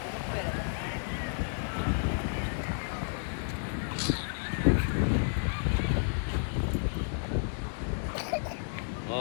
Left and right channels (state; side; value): silent; right; digital silence